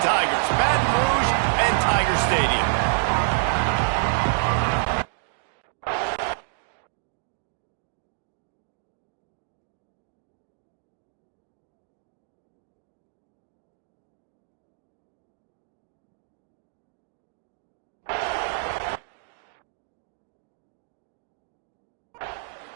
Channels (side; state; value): left; silent; digital silence